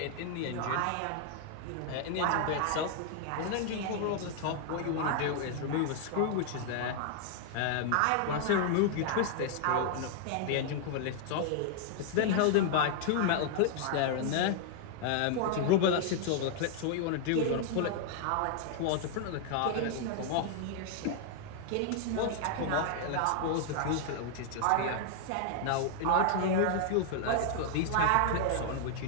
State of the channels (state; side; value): different; both; correlation 0.00